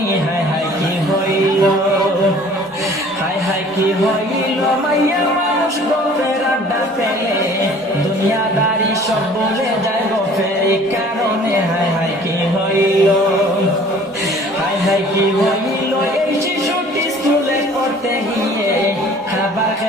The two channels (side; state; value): both; normal; correlation 0.51